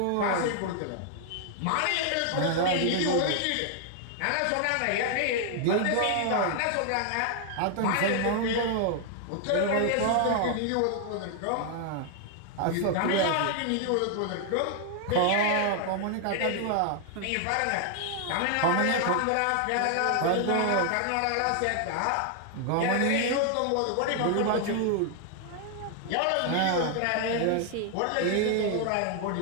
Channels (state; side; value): different; both; correlation 0.00